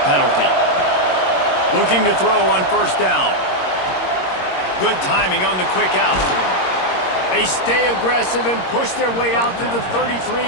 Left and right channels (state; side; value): late; right; 22 ms